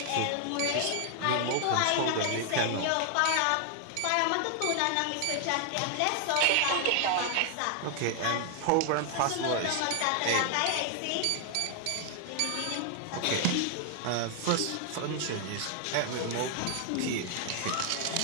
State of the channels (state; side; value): different; both; correlation 0.00